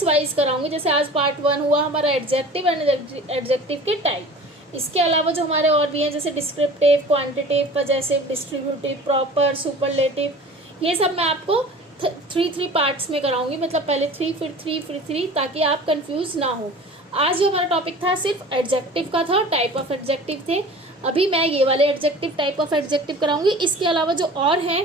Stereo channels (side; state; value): both; normal; correlation 0.41